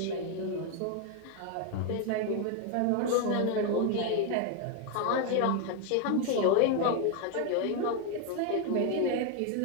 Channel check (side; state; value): both; different; correlation 0.01